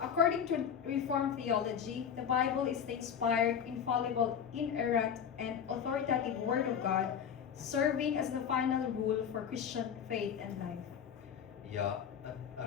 to Reformed theology, the Bible is the inspired, infallible, inerrant, and authoritative Word of God, serving as the final rule for Christian faith and life. Ja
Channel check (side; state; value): right; quieter; 8.0 dB